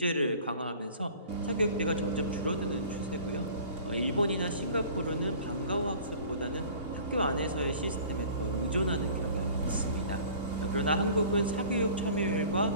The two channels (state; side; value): inverted; both; correlation -0.46